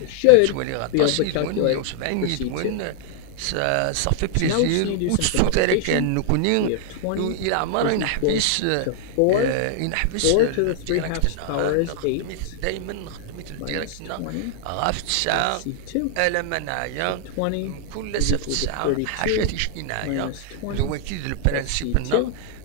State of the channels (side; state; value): both; different; correlation 0.00